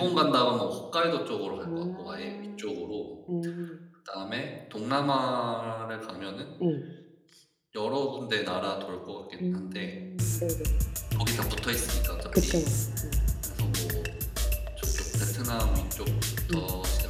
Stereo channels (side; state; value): both; identical; correlation 1.00